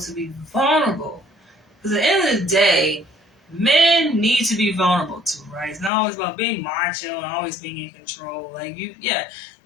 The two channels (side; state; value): right; drops out; at 5.9 s